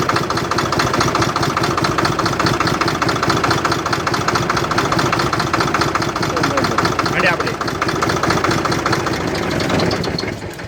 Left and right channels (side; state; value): both; identical; correlation 1.00